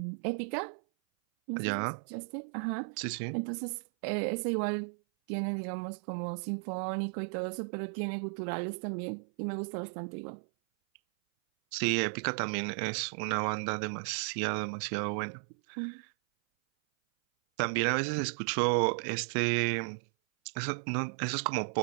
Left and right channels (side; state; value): left; silent; 55 dB below the other